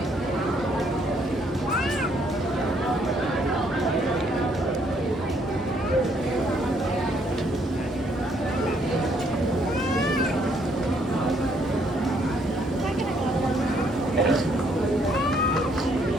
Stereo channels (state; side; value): normal; both; correlation 0.68